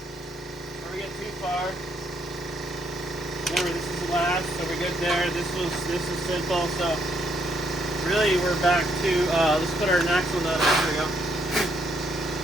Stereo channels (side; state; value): both; normal; correlation 0.73